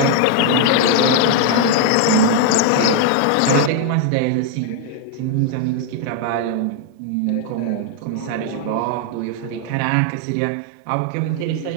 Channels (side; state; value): both; different; correlation 0.00